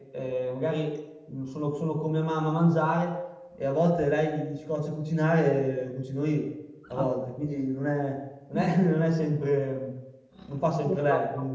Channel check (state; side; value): identical; both; correlation 1.00